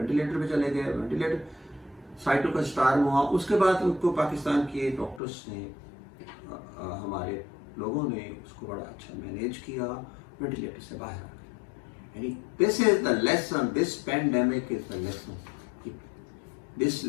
पे चले गए, वेंटिलेटर साइटो का स्टार्म हुआ। उसके बाद उनको पाकिस्तान के डॉक्टर्स ने, हमारे लोगों ने उसको बड़ा अच्छा मैनेज किया, वेंटिलेटर से बाहर आ गए। यानी this is the lesson, this pandemic is the lesson, this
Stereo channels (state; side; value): drops out; right; at 5.2 s